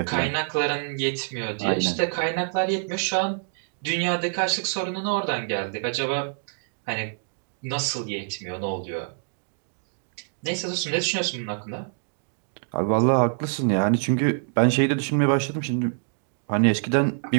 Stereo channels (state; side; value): silent; left; digital silence